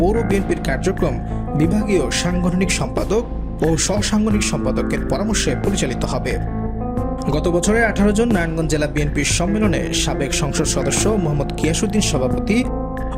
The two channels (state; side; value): identical; both; correlation 1.00